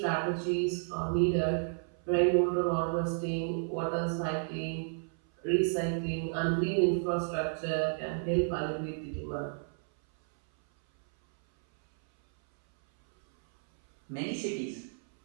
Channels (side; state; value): left; silent; 57 dB below the other